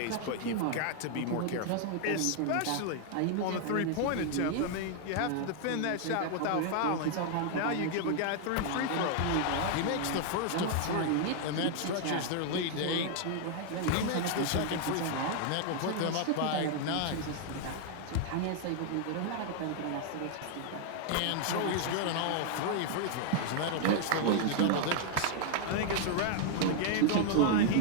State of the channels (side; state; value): both; different; correlation 0.00